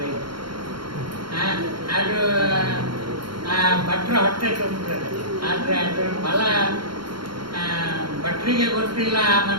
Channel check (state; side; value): late; left; 0.73 ms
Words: ಅದು ಭಟ್ರ ಹೊಟ್ಟೆ ತುಂಬುತ್ತದೆ. ಆದರೆ ಅದರ ಫಲ ಭಟ್ರಿಗೆ ಗೊತ್ತಿಲ್ಲ ಆ